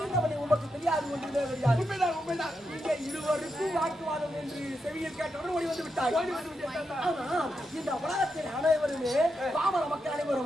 உமக்கு தெரியாது ஒன்றுமே தெரியாது. உண்மைதான் உண்மைதான். நீங்க இருவருக்கும் வாக்குவாதம் என்று செவியில் கேட்டவுடன் ஓடி வந்து விட்டாய். இந்த உலகத்தில் அனைவருமே பாமர மக்கள்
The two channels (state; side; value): normal; both; correlation 0.85